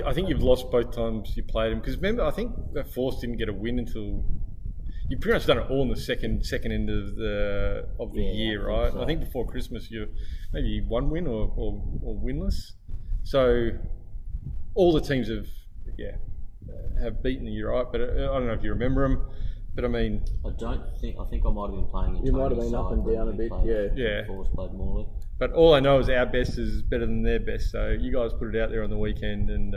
you've lost both times you played them, because remember, I think that Force didn't get a win until. You've pretty much done it all in the second end of the year, right? I think before Christmas you maybe 1 win or winless. So all the teams have beaten you, right? But I don't know if you remember them. But I mean, I think I might have been playing. You might have been up and down a bit, yeah. Force played Morley. But all I know is our best is better than their best. So you guys put it out there on the weekend, and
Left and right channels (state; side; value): identical; both; correlation 1.00